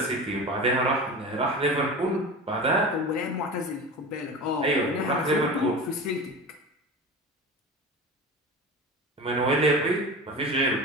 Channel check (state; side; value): normal; both; correlation 0.31